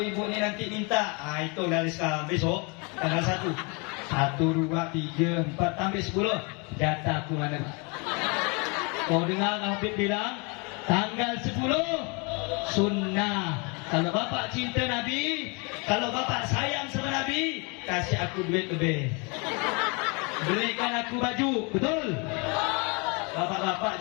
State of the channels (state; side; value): quieter; right; 31.4 dB